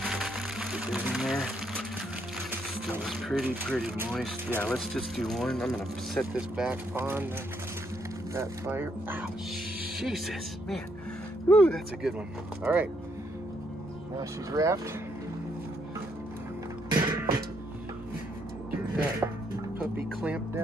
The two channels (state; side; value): normal; both; correlation 0.73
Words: Get it in there. Still is pretty moist. Yeah, let's just do one. I'm gonna set this back on that fire. Ow, Jesus, man. Woo, that's a good one. All right, now she's wrapped. Get that puppy clamped